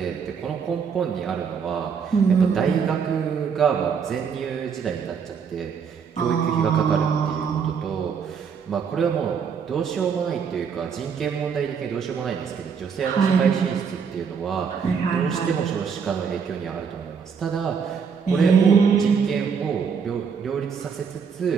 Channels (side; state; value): left; quieter; 6.5 dB